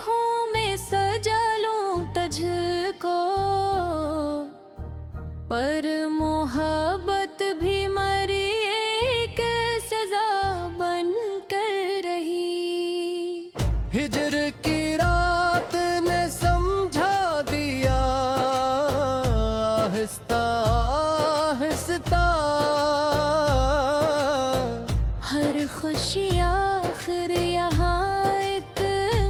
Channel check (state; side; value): identical; both; correlation 1.00